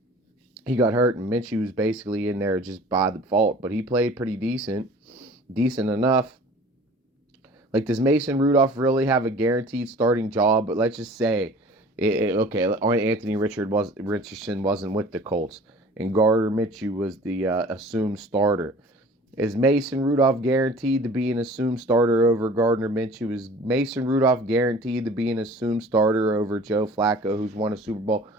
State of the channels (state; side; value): normal; both; correlation 0.46